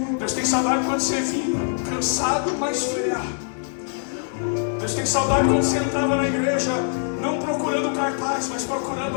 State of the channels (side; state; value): right; silent; digital silence